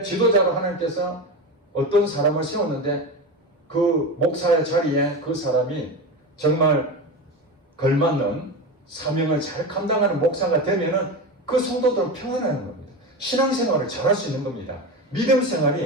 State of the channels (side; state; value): both; normal; correlation 0.22